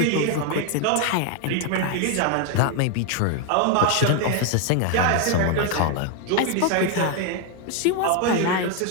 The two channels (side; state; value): both; different; correlation 0.01